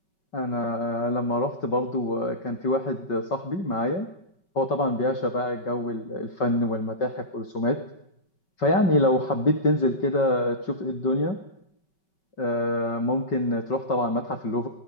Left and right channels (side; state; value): right; late; 5.3 ms